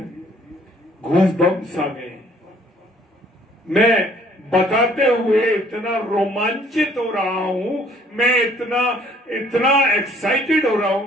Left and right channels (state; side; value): normal; both; correlation 0.60